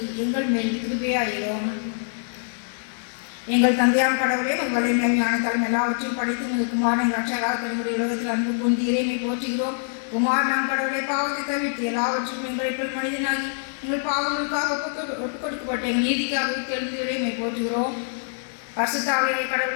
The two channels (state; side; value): silent; right; digital silence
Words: எங்கள் மேல் கிருபையாயிரும். எங்கள் தந்தையாம் கடவுளே, உங்களை ஞானத்தாலும் எல்லாவற்றையும் படித்து உங்கள் குமாரன் ரட்சகராக தன்னுடைய உலகத்தில் அன்பு கொண்டு இறைமை போற்றுகிறோம். குமார் நாம் கடவுளை பாவத்தை தவிர்த்து எல்லாவற்றையும் எங்களை போல் மனிதனாகி எங்கள் பாவங்களுக்காக ஒப்புக் கொடுக்கப்பட்ட எங்கள் நீதிக்காக எழுந்து இறைமை போற்றுகிறோம். பரிசுத்த ஆவியாகிய